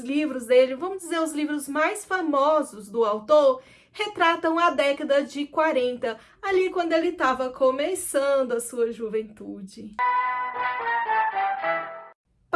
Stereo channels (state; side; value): identical; both; correlation 1.00